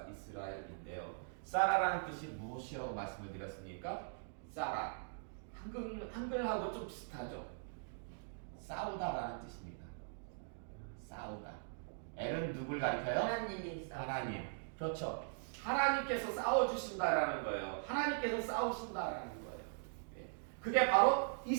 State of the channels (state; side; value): silent; left; digital silence